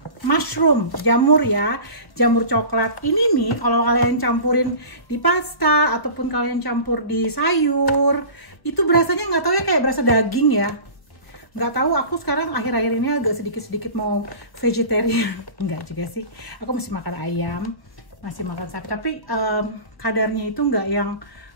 mushroom, jamur ya, jamur coklat. Ini nih kalau kalian campurin di pasta ataupun kalian campur di sayur, itu berasanya nggak tahu ya, kayak berasa daging ya. Nggak tahu, aku sekarang akhir-akhir ini agak sedikit-sedikit mau vegetarian. Enggak juga sih, aku masih makan ayam, masih makan sapi, tapi kadarnya itu nggak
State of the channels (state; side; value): late; right; 1.2 ms